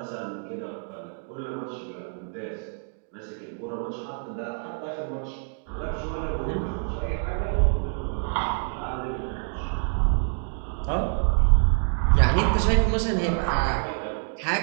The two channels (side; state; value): left; silent; 60 dB below the other